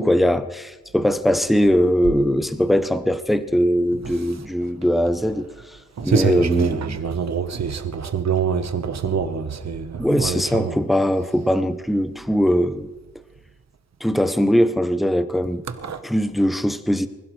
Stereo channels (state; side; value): normal; both; correlation 0.85